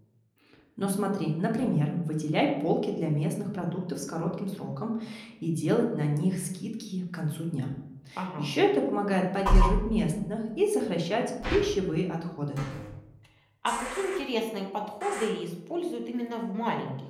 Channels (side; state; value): both; identical; correlation 1.00